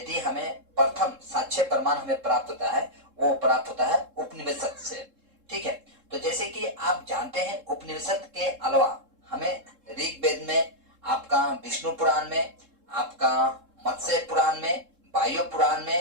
हमें प्रथम साक्ष्य प्रमाण हमें प्राप्त होता है, वो प्राप्त होता है उपनिषद से। ठीक है, तो जैसे कि आप जानते हैं, उपनिषद के अलावा हमें ऋग्वेद में, आपका विष्णु पुराण में, आपका मत्स्य पुराण में, वायु पुराण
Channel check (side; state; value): left; late; 3.7 ms